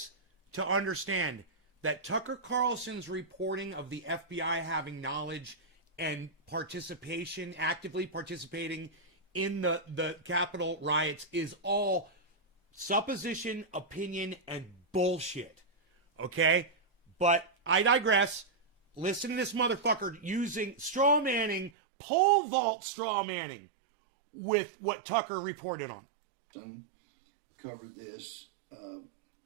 to understand that Tucker Carlson's reporting of the FBI having knowledge and participation, actively participating in the Capitol riots is all supposition, opinion, and bullshit. Okay? But I digress. Listen to this motherfucker using straw manning, pole vault straw manning with what Tucker reported on. Covered this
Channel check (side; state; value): left; drops out; at 21.7 s